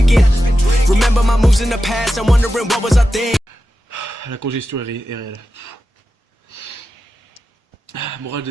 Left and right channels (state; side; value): normal; both; correlation 0.92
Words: Remember my moves in the past, I'm wondering what was I thinking. La congestion est réelle. Morale